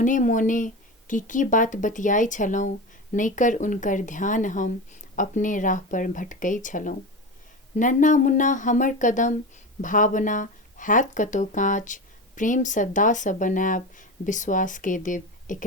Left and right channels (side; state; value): both; normal; correlation 0.25